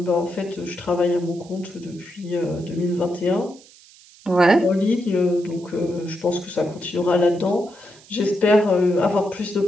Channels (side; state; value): right; noise; hiss, 24 dB below the sound